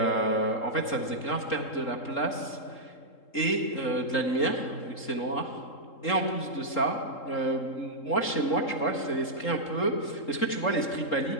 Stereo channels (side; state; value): right; late; 3.7 ms